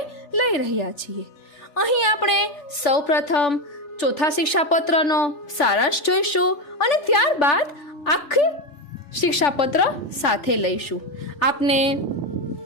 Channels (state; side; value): late; right; 3.5 ms